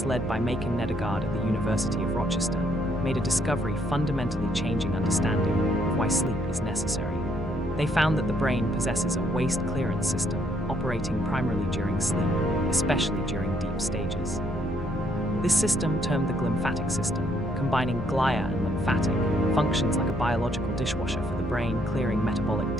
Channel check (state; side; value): normal; both; correlation 0.70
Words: led by Macon Nedegard at the University of Rochester made a discovery fundamentally changing understanding of why sleep is necessary. They found that the brain possesses a waste clearance system operating primarily during sleep, especially during deep stages. This system, termed the glymphatic system, combining glia and lymphatic, functions like a biological dishwasher for the brain, clearing metabolic